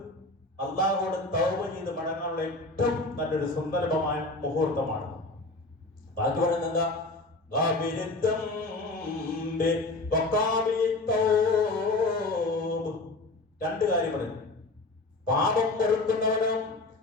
അല്ലാഹുവോട് തൗബ ചെയ്ത് മടങ്ങാനുള്ള ഏറ്റവും നല്ലൊരു സുന്ദരമായ മുഹൂർത്തമാണ്. ബാക്കി പറയുന്നത് രണ്ട് കാര്യം പറയുന്നു. പാപം പൊറുക്കുന്നവനും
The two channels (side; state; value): right; quieter; 3.0 dB